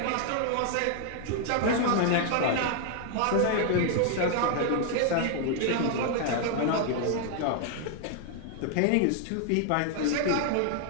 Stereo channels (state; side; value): different; both; correlation 0.00